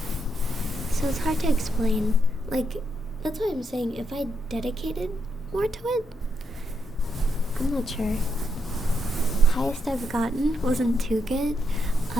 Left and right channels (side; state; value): both; normal; correlation 0.80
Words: So it's hard to explain. That's why I'm saying if I dedicated more to it, I'm not sure. Highest I've gotten wasn't too good.